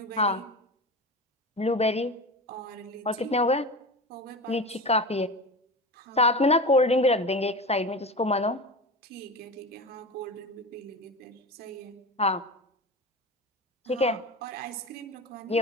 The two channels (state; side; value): normal; both; correlation 0.28